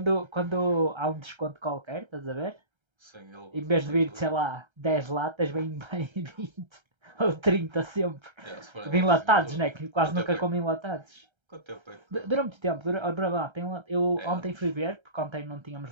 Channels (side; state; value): left; late; 1.3 ms